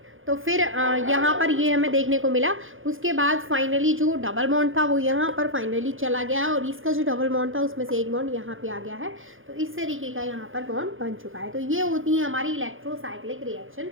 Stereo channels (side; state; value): left; late; 0.59 ms